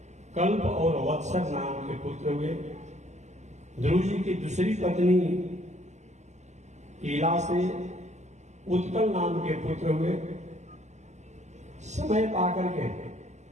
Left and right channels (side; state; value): left; late; 0.33 ms